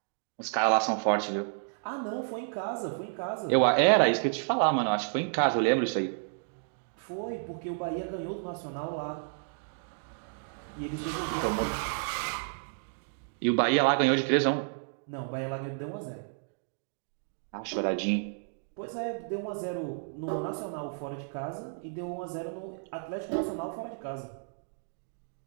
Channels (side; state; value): left; silent; digital silence